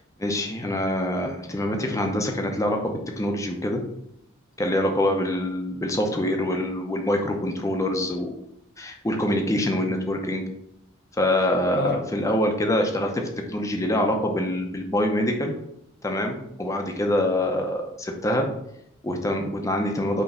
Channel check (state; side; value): normal; both; correlation 0.56